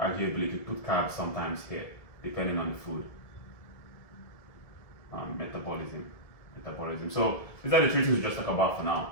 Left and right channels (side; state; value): right; late; 1.7 ms